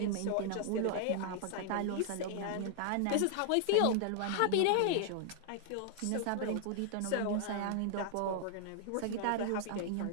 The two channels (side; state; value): both; different; correlation 0.00